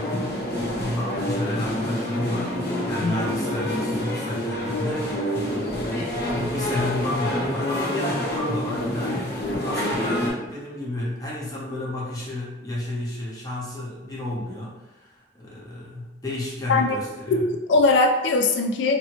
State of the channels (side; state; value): both; normal; correlation 0.32